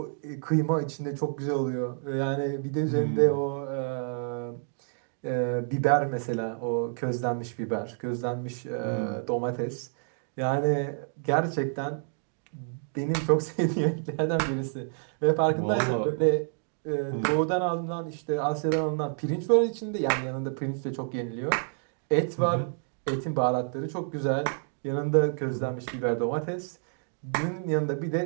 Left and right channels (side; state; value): left; silent; digital silence